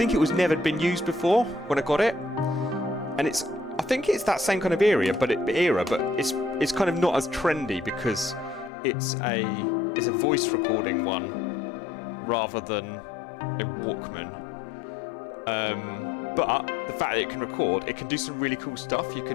it was never been used before when I got it, and I think it's that same kind of era, but it's kind of not as trendy because it's a voice recording one rather than a Walkman. But the fact that it can record, it can do some really cool stuff. You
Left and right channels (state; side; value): drops out; right; at 8.7 s